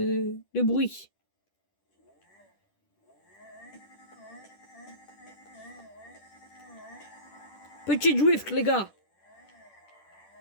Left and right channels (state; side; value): late; right; 10 ms